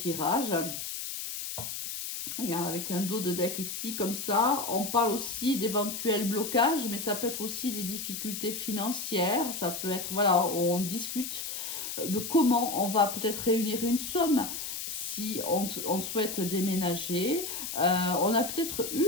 avec un dos de deck ici, comme ça. On parle aussi d'éventuels blocages, mais ça peut être aussi des difficultés financières. Ça peut être, voilà, on discute de comment on va peut-être réunir une somme si on souhaite déménager. On a peut-être eu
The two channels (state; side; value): noise; left; hiss, 5 dB below the sound